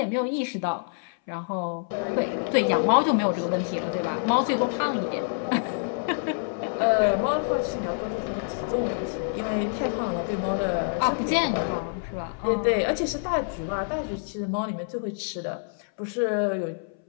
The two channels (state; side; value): silent; right; 60 dB below the other